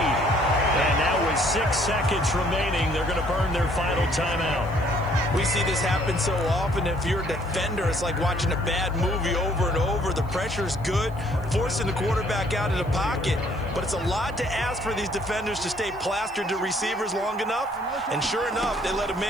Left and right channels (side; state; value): left; noise; hiss, 29 dB below the sound